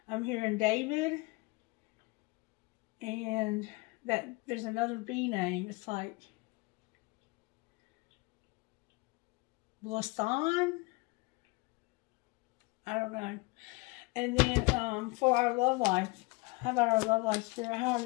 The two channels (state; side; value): quieter; right; 25.3 dB